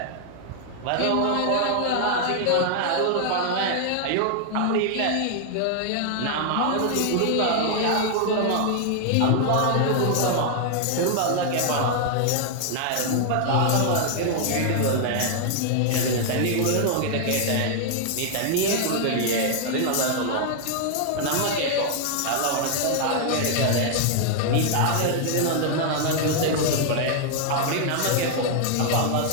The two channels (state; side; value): different; both; correlation 0.00